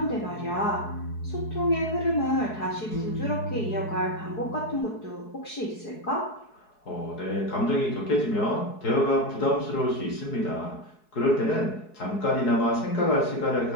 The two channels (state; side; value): late; right; 4.7 ms